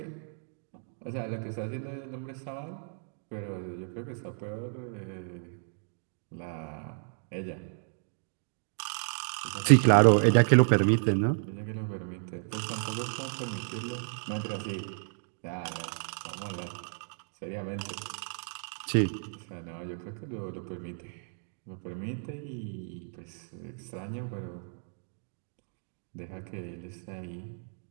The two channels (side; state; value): left; silent; digital silence